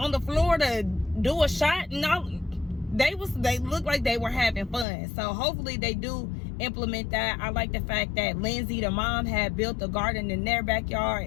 the floor to do a shot, and all. They looked like they were having fun. So hopefully they do implement that. I like the fact that Lindsay, the mom, had built a garden in their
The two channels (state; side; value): drops out; right; at 4.9 s